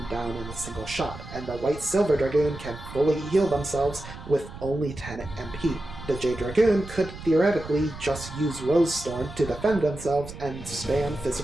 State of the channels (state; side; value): noise; right; rumble, 13 dB below the sound